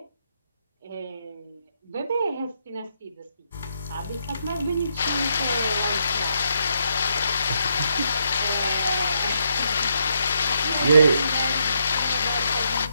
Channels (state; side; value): inverted; both; correlation -0.78